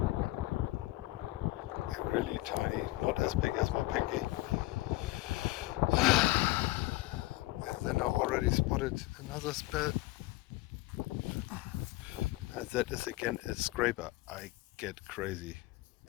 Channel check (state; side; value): quieter; right; 19.3 dB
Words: really tiny, not as big as my pinky. And then I already spotted another spell. And that is again a scraper. I get crazy,